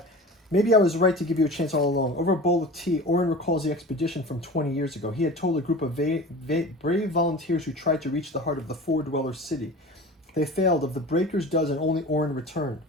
Maybe I was right to give you a chance all along. Over a bowl of tea, Orin recalls the expedition from 20 years ago. He had told a group of brave volunteers who tried to reach the heart of the Four Dweller City. They failed. Of the breaker's dozen, only Orin returned.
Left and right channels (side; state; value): both; normal; correlation 0.36